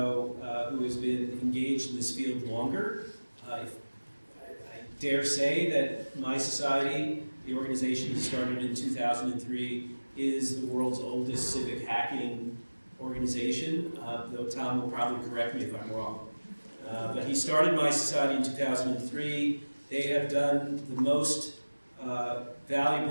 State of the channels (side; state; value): both; inverted; correlation -1.00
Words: who has been engaged in this field longer. I dare say that mySociety, the organization that started in 2003, is the world's oldest civic hacking organization, though Tom will probably correct me if I'm wrong. But he started mySociety in 2003. They have done the most